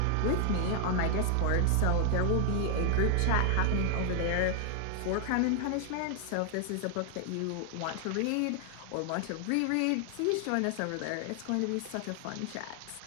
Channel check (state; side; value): different; both; correlation 0.00